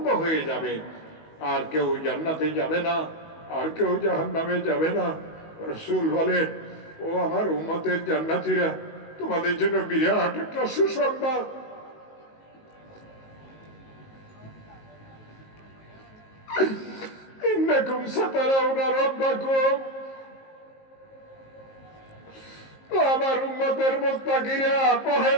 হয়ে যাবে। আর কেউ জান্নাতে যাবে না, আর কেউ জাহান্নামে যাবে না। রাসূল বলে, ও আমার উম্মতের জান্নাতীরা, তোমাদের জন্য বিরাট একটা সুসংবাদ। ইন্নাকুম সাতারাউনা রাব্বাকুম, আমার উম্মতের মুত্তাকিরা,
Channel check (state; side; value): late; right; 19 ms